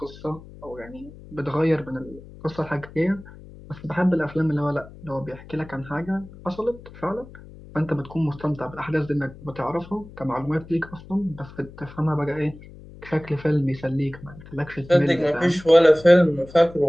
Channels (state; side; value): noise; left; hum, 18 dB below the sound